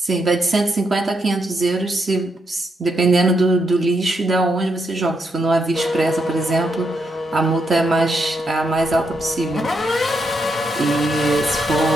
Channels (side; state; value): both; normal; correlation 0.80